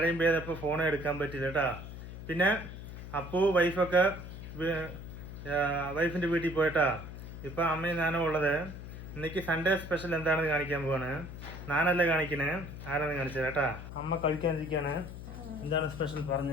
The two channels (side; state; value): left; noise; hum, 11 dB below the sound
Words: പെയ്തപ്പോൾ ഫോൺ എടുക്കാൻ പറ്റില്ല കേട്ടോ. പിന്നെ അപ്പു വൈഫൊക്കെ വൈഫിന്റെ വീട്ടിൽ പോയിട്ടാ. ഇപ്പൊ അമ്മയും ഞാനും ഉള്ളത്. ഇന്നേക്ക് സൺഡേ സ്പെഷ്യൽ എന്താണെന്ന് കാണിക്കാൻ പോവാണ്. ഞാനല്ല കാണിക്കണേ, ആരാന്ന് കാണിച്ചത് കേട്ടാ. അമ്മ കഴിക്കാനിരിക്കാണ്. എന്താണ് സ്പെഷ്യൽ